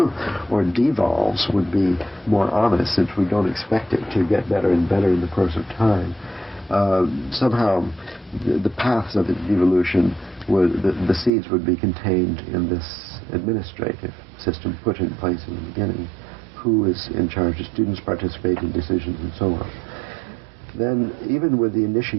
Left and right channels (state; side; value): drops out; left; at 11.3 s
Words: or devolves would be more honest, since we don't expect it to get better and better in the course of time. Somehow the paths of its devolution, the seeds would be contained in this administrative system put in place in the beginning. Who is in charge? Do students participate in decisions and so on? Then, even with the